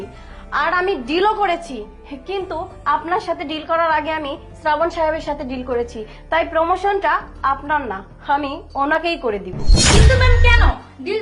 আর আমি ডিলও করেছি, কিন্তু আপনার সাথে ডিল করার আগে আমি শ্রাবণ সাহেবের সাথে ডিল করেছি, তাই প্রমোশনটা আপনার না, আমি ওনাকেই করে দিব। কিন্তু ম্যাম কেন? ডিল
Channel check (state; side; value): identical; both; correlation 1.00